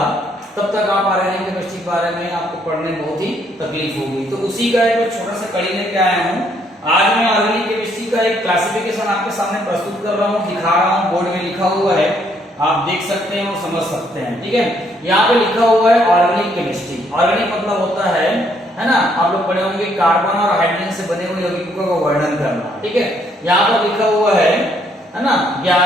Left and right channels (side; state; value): both; normal; correlation 0.69